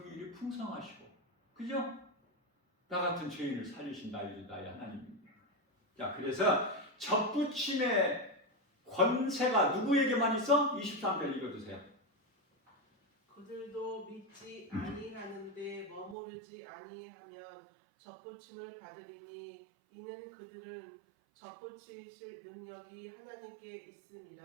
풍성하시고, 그죠? 나 같은 죄인을 살리신 나의 하나님입니다. 자, 그래서 접붙임의 권세가 누구에게만 있어? 23절 읽어주세요. 그들도 믿지 아니하는데 머무르지 아니하면 접붙임을 받으리니 이는 그들은 접붙이실 능력이 하나님께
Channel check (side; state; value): left; drops out; at 16.2 s